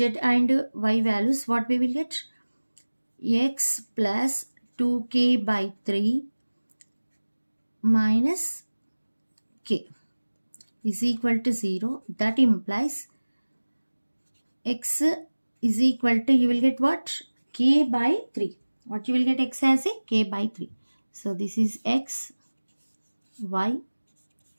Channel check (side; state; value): both; inverted; correlation -1.00